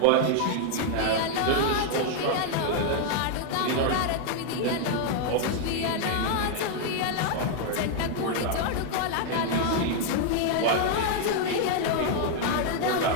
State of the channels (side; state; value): both; different; correlation 0.00